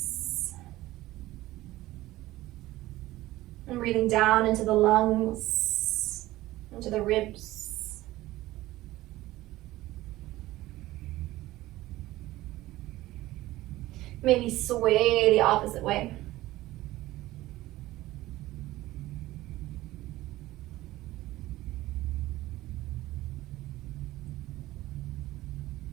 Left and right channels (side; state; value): left; quieter; 16.9 dB